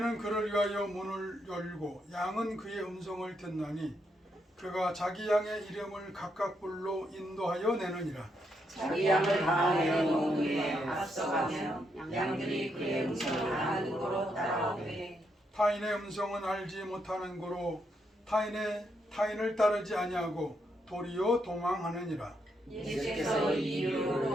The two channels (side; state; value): both; normal; correlation 0.79